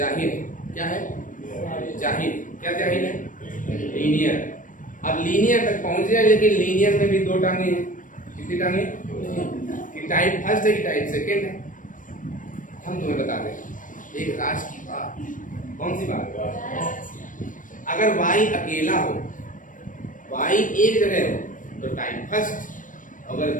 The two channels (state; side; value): late; right; 0.38 ms